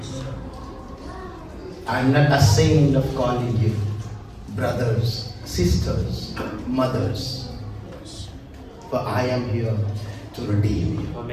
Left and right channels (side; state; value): both; identical; correlation 1.00